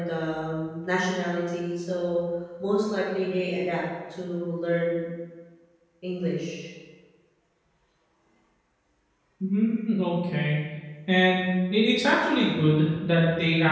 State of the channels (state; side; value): identical; both; correlation 1.00